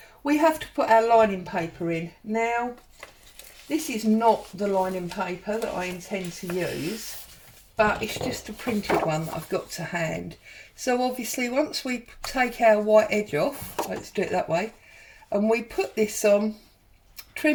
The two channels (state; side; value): identical; both; correlation 1.00